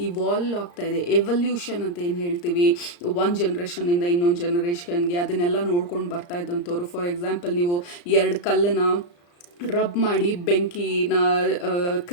ಇವಾಲ್ವ್ ಆಗ್ತಾ ಇದೆ, ಎವಲ್ಯೂಷನ್ ಅಂತ ಏನು ಹೇಳ್ತೀವಿ, ಒಂದು ಜನ್ರೇಷನಿಂದ ಇನ್ನೊಂದು ಜನ್ರೇಷನ್ಗೆ, ಅದನ್ನೆಲ್ಲ ನೋಡ್ಕೊಂಡು ಬರ್ತಾ ಇದ್ದಂಥವ್ರು. ಫಾರ್ ಎಕ್ಸಾಂಪಲ್, ನೀವು ಎರಡು ಕಲ್ಲನ್ನು ರಬ್ ಮಾಡಿ ಬೆಂಕಿನ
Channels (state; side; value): late; right; 34 ms